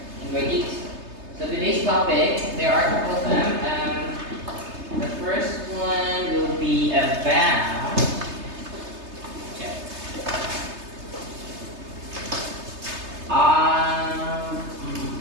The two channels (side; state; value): left; late; 3.3 ms